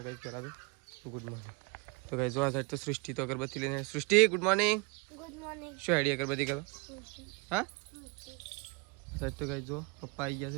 ગાઈસ પહેલાં તો ગુડ મોર્નિંગ. તો ગાઈસ જો આ સાઈડ તો સૃષ્ટિ તો અગરબત્તી લઈને. સૃષ્ટિ ગુડ મોર્નિંગ. Good morning. શું આઈડિયા અગરબત્તી કરો? હા સાહેબ તો ગાઈસ જો પપ્પા આવી ગયા છે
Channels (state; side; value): quieter; left; 28.9 dB